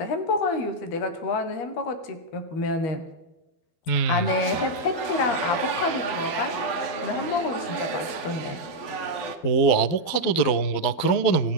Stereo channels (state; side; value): late; right; 12 ms